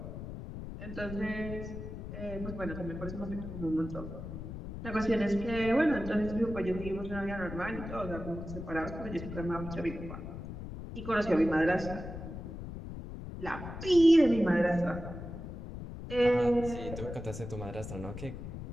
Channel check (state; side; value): noise; left; rumble, 9 dB below the sound